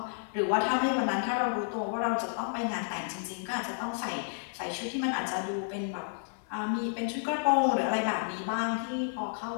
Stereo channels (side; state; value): right; silent; 57 dB below the other